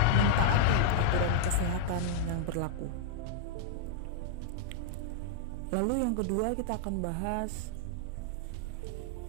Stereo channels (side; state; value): both; different; correlation -0.01